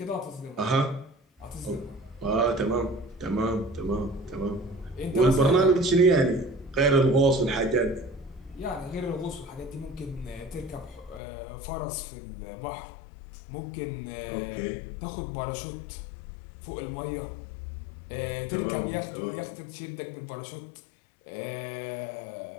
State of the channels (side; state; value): right; drops out; at 11.2 s